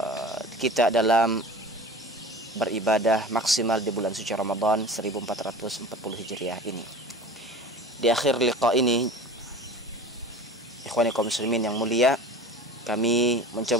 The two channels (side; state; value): both; normal; correlation 0.38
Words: kita dalam beribadah maksimal di bulan suci Ramadan 1440 Hijriah ini. Di akhir liqa ini, ikhwani kaum muslimin yang mulia, kami